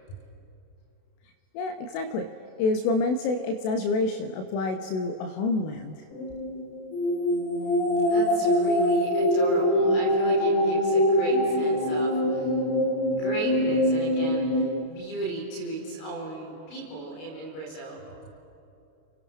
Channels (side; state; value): right; late; 32 ms